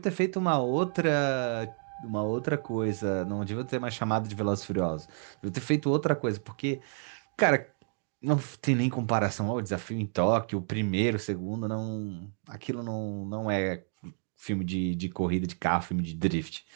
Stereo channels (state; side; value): silent; left; 58 dB below the other